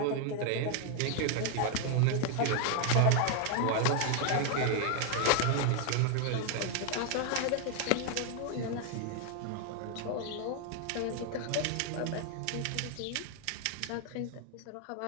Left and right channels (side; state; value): both; different; correlation 0.00